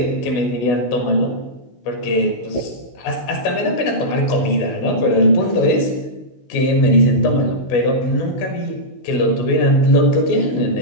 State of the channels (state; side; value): late; right; 16 ms